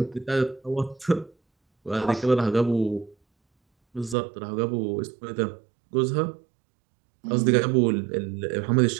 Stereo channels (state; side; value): drops out; left; at 4.2 s